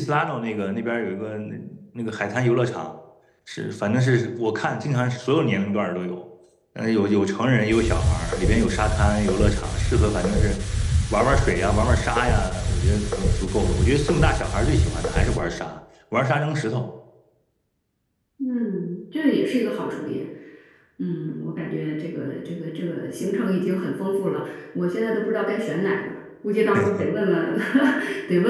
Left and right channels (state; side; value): identical; both; correlation 1.00